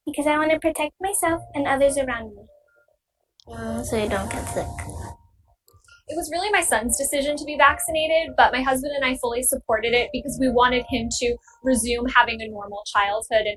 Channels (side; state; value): both; identical; correlation 1.00